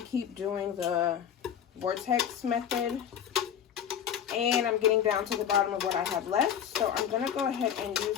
keep doing the vortex method. And I'm getting down to the bottom of what I have left. So I'm going to go ahead and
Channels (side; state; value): right; quieter; 8.9 dB